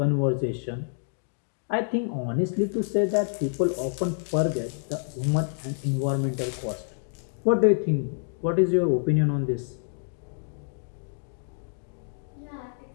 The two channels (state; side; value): silent; right; digital silence